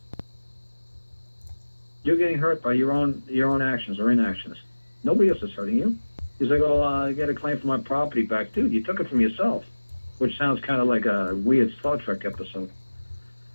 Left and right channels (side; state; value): both; inverted; correlation -1.00